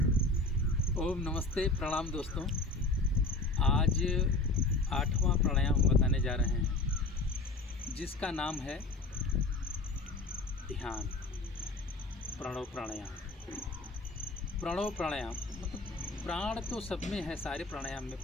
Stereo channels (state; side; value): quieter; right; 3.1 dB